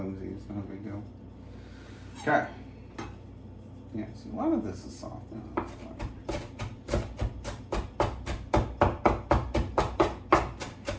it's not a big deal. Okay. Yeah, see, a lot of this is soft now.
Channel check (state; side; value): identical; both; correlation 1.00